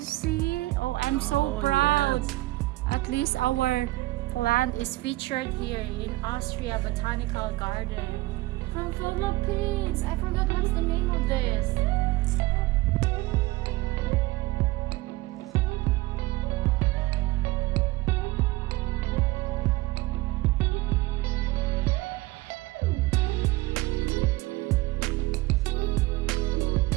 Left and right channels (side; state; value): left; quieter; 19.8 dB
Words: see? Oh, I'm so proud. Yes. At least our plant is featured here in Austria Botanical Garden. From Philippines. I forgot what's the name of this.